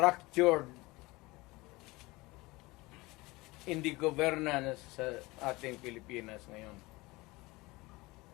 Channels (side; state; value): right; quieter; 22.1 dB